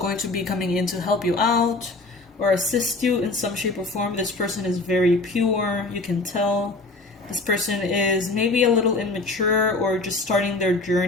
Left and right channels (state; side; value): quieter; right; 3.2 dB